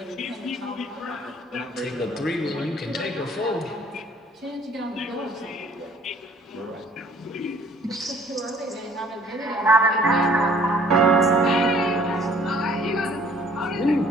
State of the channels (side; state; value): both; normal; correlation 0.57